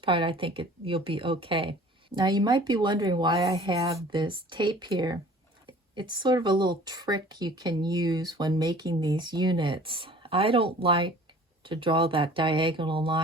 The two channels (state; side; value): normal; both; correlation 0.48